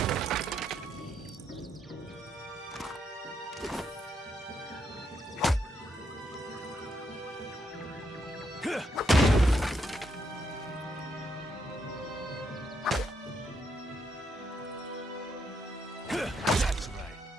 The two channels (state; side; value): normal; both; correlation 0.77